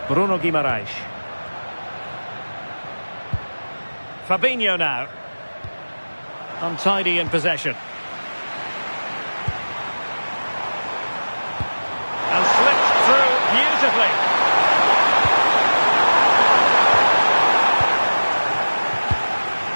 Bruno Guimaraes. Fabinho now. Untidy in possession. And slipped through beautifully.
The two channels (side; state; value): both; inverted; correlation -1.00